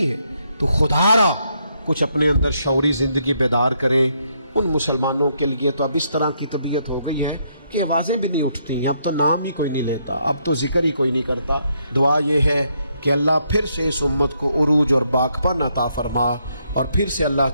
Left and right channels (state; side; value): inverted; both; correlation -0.75